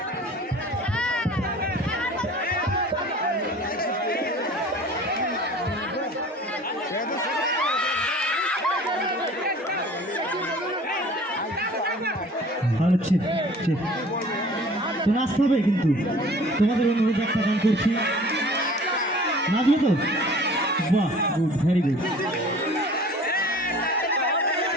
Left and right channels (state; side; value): normal; both; correlation 0.46